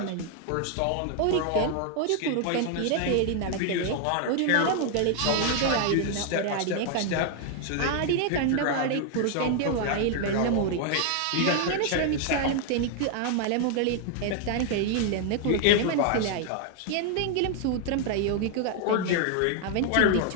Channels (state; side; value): different; both; correlation 0.00